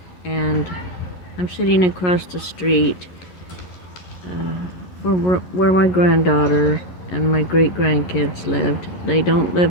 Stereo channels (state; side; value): late; right; 11 ms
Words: and I'm sitting across the street where my granddaughter and my great-grandkids lived. They don't